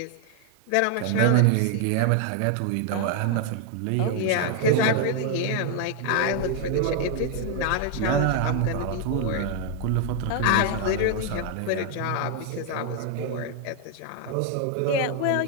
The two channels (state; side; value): different; both; correlation 0.00